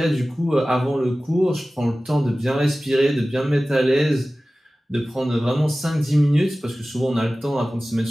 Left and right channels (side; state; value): both; normal; correlation 0.97